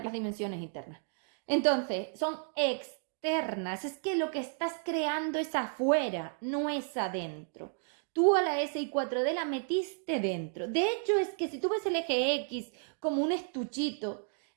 las dimensiones internas. Entonces, son externas. Es que lo que estás creando es afuera, no es adentro. Tú a la SI4D la metiste dentro. De hecho, es que si tú ves el eje X como un estuchito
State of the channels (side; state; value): left; silent; 56 dB below the other